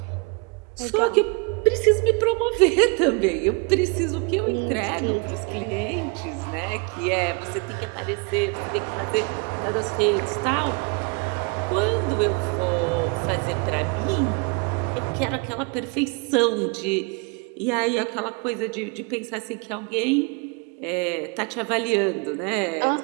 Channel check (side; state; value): left; quieter; 32.8 dB